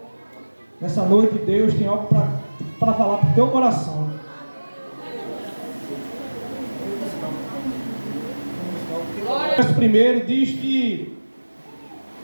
nessa noite Deus tem algo para falar para o teu coração. O verso primeiro diz que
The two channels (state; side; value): inverted; both; correlation -1.00